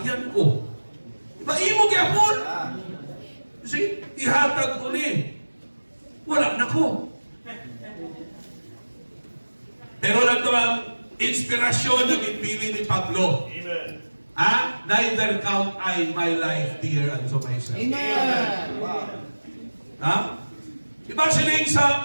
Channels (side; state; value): both; inverted; correlation -1.00